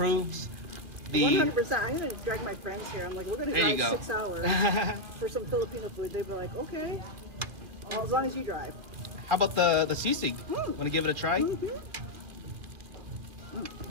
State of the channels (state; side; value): late; left; 2.3 ms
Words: the. 100%. I'm going to drag my friends here. I'm like, we're going to There you drive go. 6 hours for some Filipino food. They'd be like, okay. Well, as long as you drive. How about the sisig? Want to give it a try?